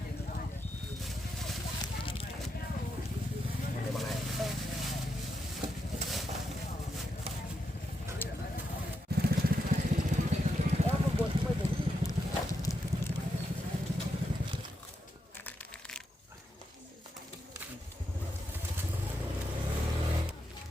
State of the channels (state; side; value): normal; both; correlation 0.83